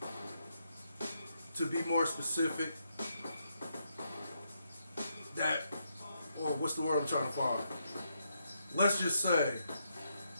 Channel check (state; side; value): inverted; both; correlation -0.79